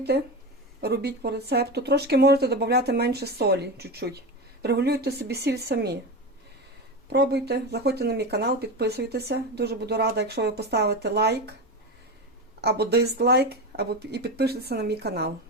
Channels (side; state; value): both; normal; correlation 0.21